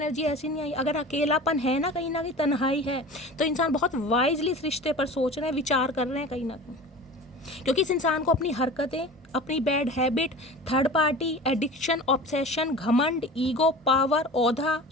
ऐसी नहीं आई। अगर अकेलापन है ना कहीं तन्हाई है, तो इंसान बहुत वाइजली इस रिश्ते पर सोच रहे हैं, विचार कर रहे हैं कहीं ना कहीं, क्योंकि इस इंसान को अपनी हरकतें, अपनी bad habit, third party, addiction, obsession, घमंड, ईगो, पावर, ओहदा,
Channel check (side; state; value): both; normal; correlation 0.36